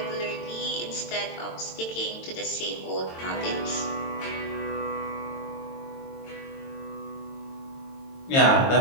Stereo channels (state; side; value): late; right; 22 ms